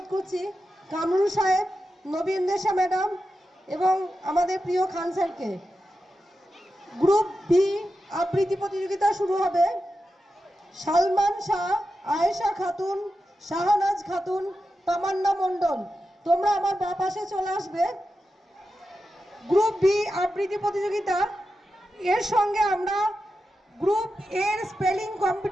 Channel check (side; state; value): both; normal; correlation 0.90